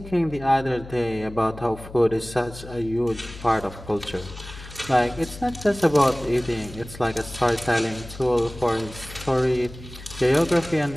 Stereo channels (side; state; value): left; noise; hum, 15 dB below the sound